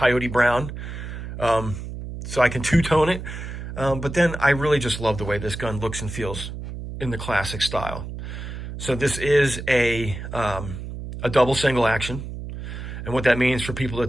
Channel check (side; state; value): right; noise; hum, 8 dB below the sound